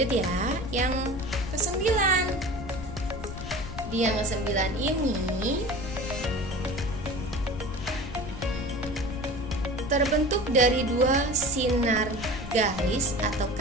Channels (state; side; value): noise; left; rumble, 10 dB below the sound